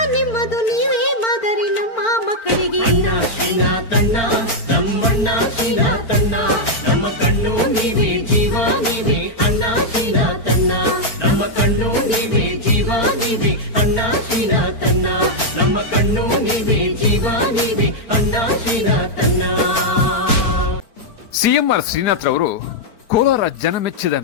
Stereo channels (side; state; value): right; late; 4.4 ms